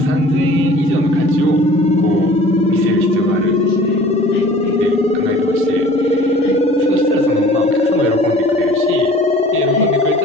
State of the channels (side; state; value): both; normal; correlation 0.47